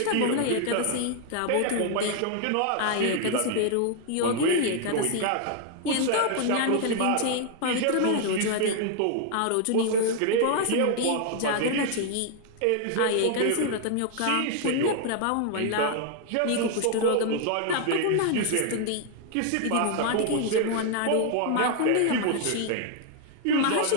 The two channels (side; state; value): both; different; correlation 0.00